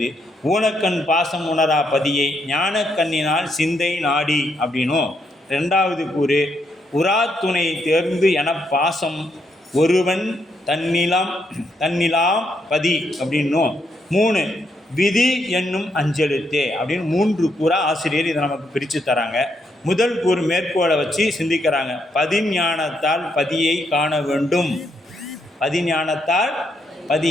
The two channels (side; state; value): both; normal; correlation 0.77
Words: ஊனக்கண் பாசம் உணரா பதியை ஞானக்கண்ணினால் சிந்தை நாடி அப்படின்னும், 2வது கூறு உராத்துணை தேர்ந்து என பாசம் ஒருவன் தன்னிலாம் பதி அப்படின்னும், 3 விதி என்னும் அஞ்செழுத்தே அப்படின்னு 3 கூறா ஆசிரியர் இதை நமக்கு பிரித்து தராங்க. முதல் கூறு மேற்கோளை வச்சு சிந்திக்கிறாங்க. பதிஞானத்தால் பதியை காண வேண்டும், பதிஞானத்தால்